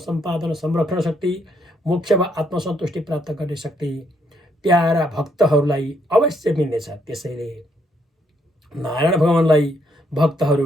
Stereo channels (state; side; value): normal; both; correlation 0.73